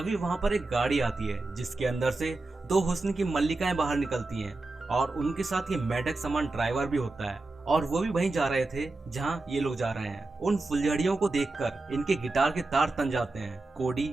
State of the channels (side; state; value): left; quieter; 3.2 dB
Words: वहां पर एक गाड़ी आती है जिसके अंदर से दो हुस्न की मल्लिकाएं बाहर निकलती हैं और उनके साथ ये मेढक समान ड्राइवर भी होता है और वो भी वहीं जा रहे थे जहां ये लोग जा रहे हैं। उन फुलझड़ियों को देखकर इनके गिटार के तार तन जाते हैं। कोडी